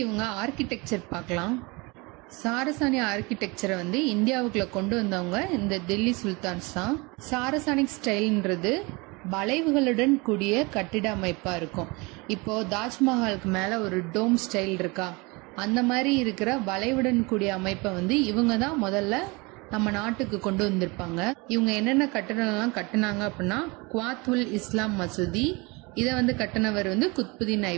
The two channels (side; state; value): left; quieter; 26.5 dB